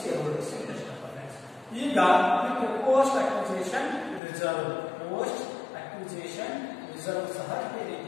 shareholders interest. ಈಗ post acquisition reserve, post acquisition reserve ಸಹ ಈ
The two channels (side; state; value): right; drops out; at 4.2 s